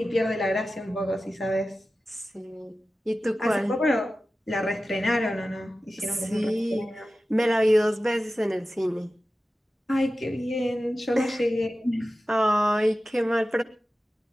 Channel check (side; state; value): both; normal; correlation 0.94